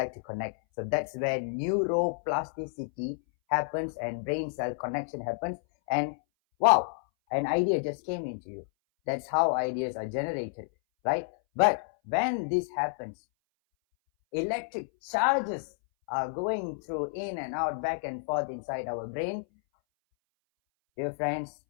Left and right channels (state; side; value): silent; right; 58 dB below the other